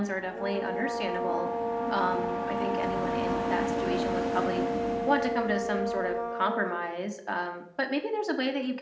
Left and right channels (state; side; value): identical; both; correlation 1.00